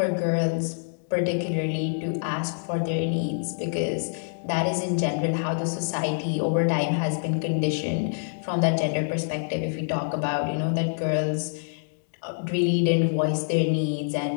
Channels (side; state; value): right; silent; digital silence